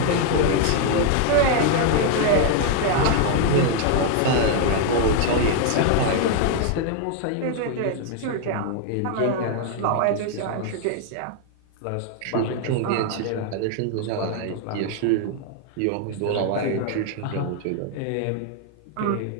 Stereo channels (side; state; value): both; different; correlation 0.00